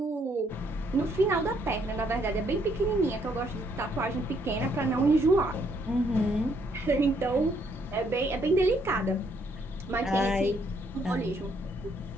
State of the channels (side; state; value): both; normal; correlation 0.70